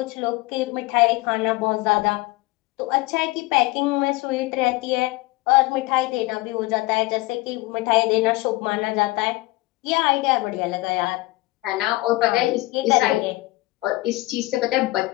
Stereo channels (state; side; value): quieter; right; 20.7 dB